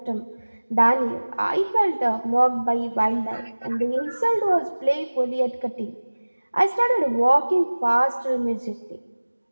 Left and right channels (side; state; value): both; inverted; correlation -1.00